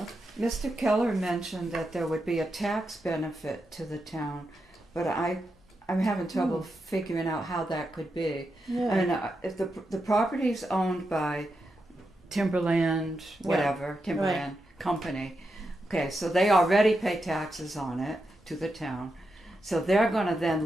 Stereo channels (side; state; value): both; normal; correlation 0.86